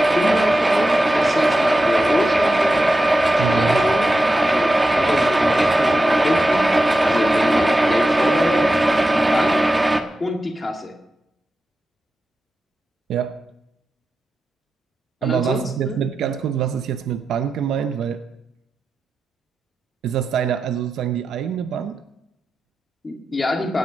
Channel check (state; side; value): normal; both; correlation 0.91